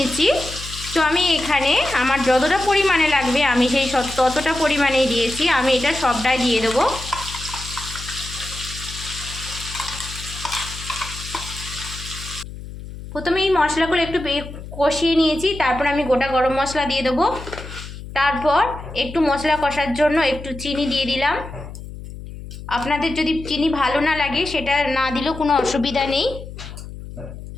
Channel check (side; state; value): left; noise; hum, 12 dB below the sound